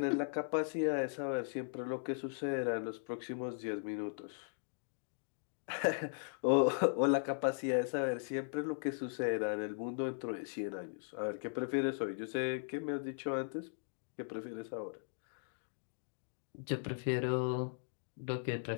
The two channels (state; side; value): silent; right; digital silence